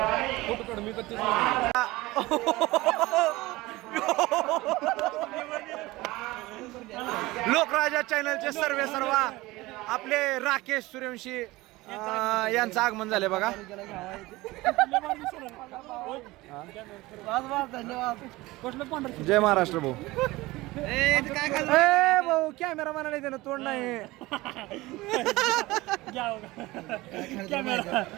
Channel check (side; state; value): left; quieter; 20.0 dB